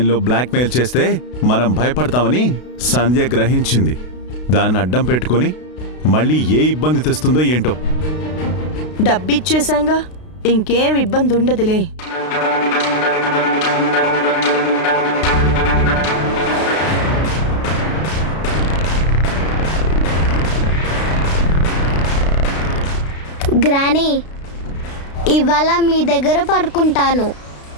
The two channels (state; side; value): late; right; 32 ms